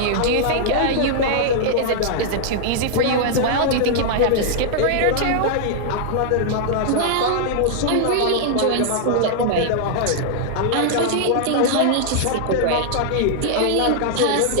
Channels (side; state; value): both; different; correlation -0.01